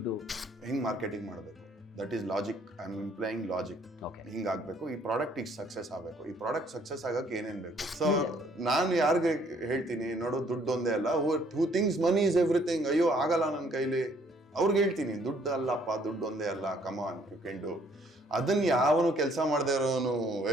ಹಿಂಗೆ ಮಾರ್ಕೆಟಿಂಗ್ ಮಾಡಬೇಕು, that is logic. I am employing logic. Okay, ಹಿಂಗಾಗಬೇಕು, ಈ ಪ್ರಾಡಕ್ಟ್ ಈಗ ಸಕ್ಸಸ್ ಆಗಬೇಕು, ಈ ಪ್ರಾಡಕ್ಟ್ ಸಕ್ಸಸ್ ಆಗಕ್ಕೆ ಏನೇನು ಬೇಕು. ಸೊ ನಾನು ಯಾರಿಗೆ ಹೇಳ್ತೀನಿ, ನೋಡು ದುಡ್ಡು ಒಂದೇ ಅಲ್ಲ, ಹೂ ಥಿಂಗ್ಸ್ ಮನಿ ಇಸ್ ಎವ್ರಿಥಿಂಗ್. ಅಯ್ಯೋ ಆಗಲ್ಲ ನನ್ನ ಕೈಲಿ, ಅವ್ರಿಗೆ ಹೇಳ್ತೀನಿ ದುಡ್ಡು ಅಲ್ಲಪ್ಪ, ದುಡ್ಡು ಒಂದೇ ಅಲ್ಲ, ಕಮಾನ್ ಯು ಕ್ಯಾನ್ ಡು. ಅದನ್ನ ಯಾವನು ಕೆಲಸ ಮಾಡದೇ ಇರೋನು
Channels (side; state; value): both; normal; correlation 0.63